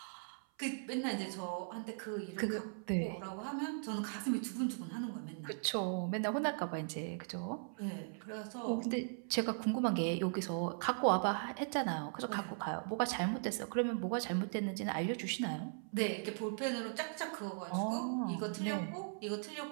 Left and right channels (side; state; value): left; silent; 52 dB below the other